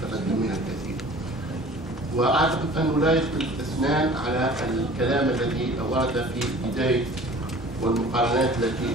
منها الكثير. وأعتقد أنه لا يختلف الاثنان على الكلام الذي ورد في بداية والمقارنات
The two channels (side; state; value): both; normal; correlation 0.46